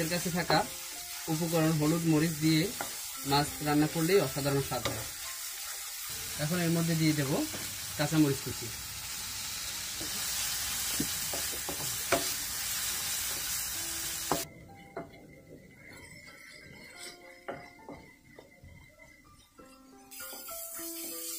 কাছে থাকা উপকরণ হলুদ মরিচ দিয়ে মাছ রান্না করলেই অসাধারণ স্বাদ হয়। এখন এর মধ্যে দিয়ে দেব কাঁচামরিচ কুচি।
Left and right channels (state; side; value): identical; both; correlation 1.00